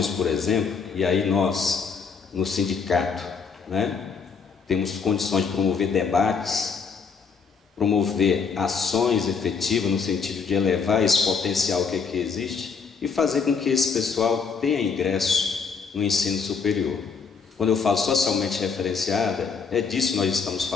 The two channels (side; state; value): right; quieter; 5.5 dB